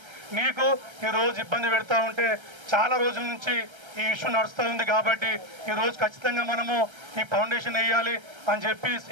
నీకు ఈరోజు ఇబ్బంది పెడతా ఉంటే చాలా రోజుల నుంచి ఈ ఇష్యూ నడుస్తూ ఉంది. కాబట్టి ఈరోజు ఖచ్చితంగా మనము ఈ ఫౌండేషన్ వేయాలి అని చెప్పి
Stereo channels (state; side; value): late; left; 1.3 ms